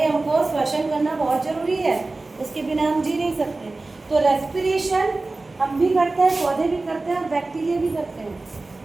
हमको श्वसन करना बहुत जरूरी है, उसके बिना हम जी नहीं सकते। तो रेस्पिरेशन हम भी करते हैं, पौधे भी करते हैं और बैक्टीरिया भी करते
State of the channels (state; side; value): quieter; left; 3.3 dB